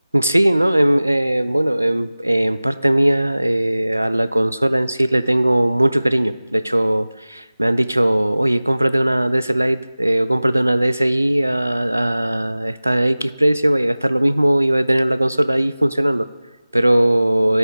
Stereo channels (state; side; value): inverted; both; correlation -0.98